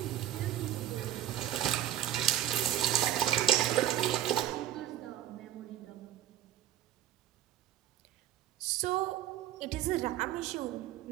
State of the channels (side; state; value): left; quieter; 12.0 dB